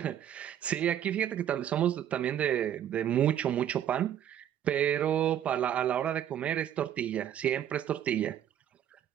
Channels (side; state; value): left; quieter; 10.4 dB